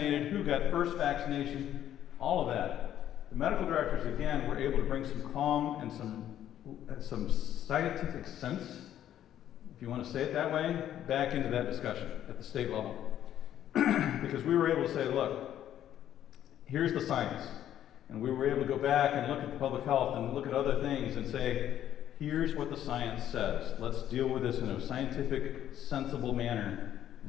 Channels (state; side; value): quieter; right; 11.2 dB